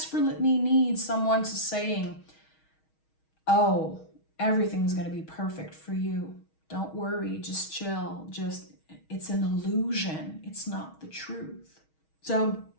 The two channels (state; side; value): late; right; 6.3 ms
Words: need someone to saying, oh, everything's going to be perfect for you. Don't worry, just chill. It's an illusion. It's not the truth. So